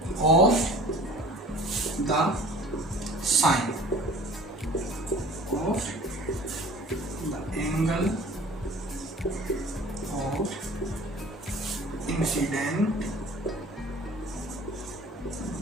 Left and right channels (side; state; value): both; normal; correlation 0.46